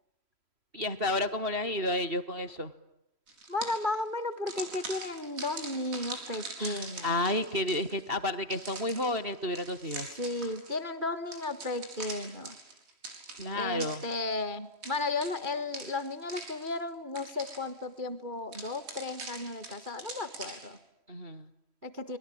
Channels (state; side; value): late; left; 3.1 ms